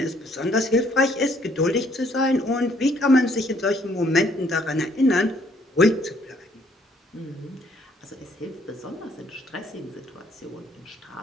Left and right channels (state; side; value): normal; both; correlation 0.65